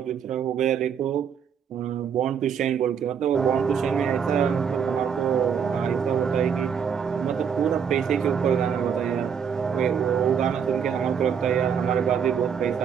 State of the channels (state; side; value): quieter; left; 7.3 dB